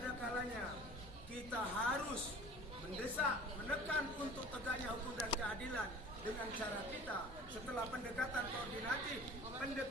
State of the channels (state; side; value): normal; both; correlation 0.43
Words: kalanya kita harus mendesak, menekan untuk tegaknya hukum dan keadilan dengan cara kita setelah pendekatan koordinatif,